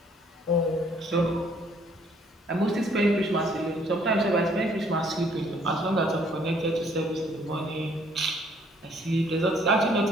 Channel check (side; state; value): both; normal; correlation 0.63